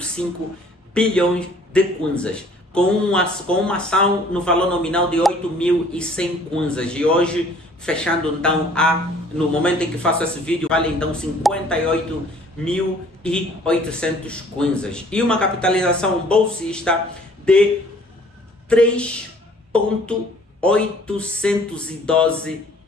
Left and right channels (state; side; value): normal; both; correlation 0.56